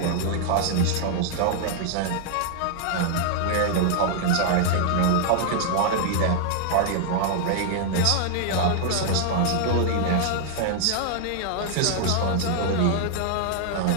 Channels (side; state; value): both; different; correlation -0.01